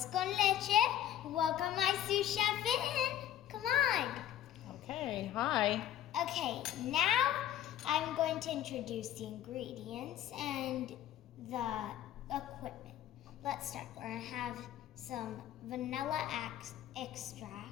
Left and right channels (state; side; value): quieter; right; 11.7 dB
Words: con leche. Welcome my sous chef in. Come on. Okay, hi. Okay, now I'm going to introduce the ingredients and the equipment. Let's start. We're going to have some vanilla